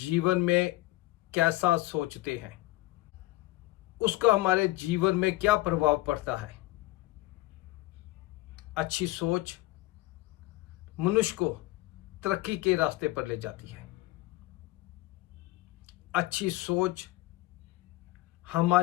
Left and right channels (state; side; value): quieter; right; 18.7 dB